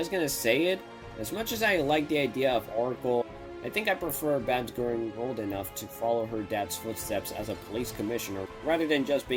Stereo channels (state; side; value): identical; both; correlation 1.00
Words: gonna say it, as much as I like the idea of Oracle, I think I prefer Babs growing old enough to follow her dad's footsteps as a police commissioner, rather than just